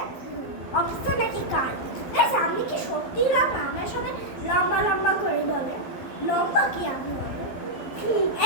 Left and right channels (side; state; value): right; late; 12 ms